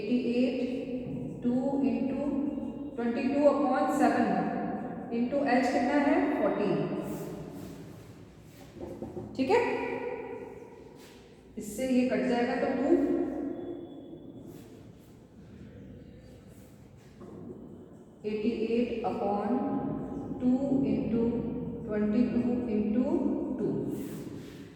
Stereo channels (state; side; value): identical; both; correlation 1.00